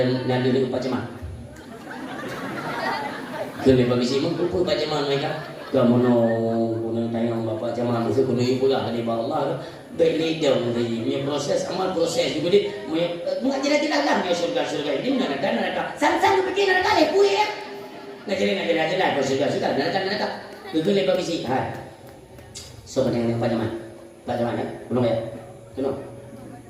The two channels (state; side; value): identical; both; correlation 1.00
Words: lupa cema. Kena polisi mengkumpul baca mana mereka. Kamu no tayang bapak cema mesti kuno ibu lah di bawah Allah. Beli dong ni proses amal proses juga di. Mengajar lah dia surga ini neraka. Sang pergi neraka le puye. Ngajar lah surga neraka. Kena polisi. Ha. So yang baca mana? Baca mana? Belum ya? Belum.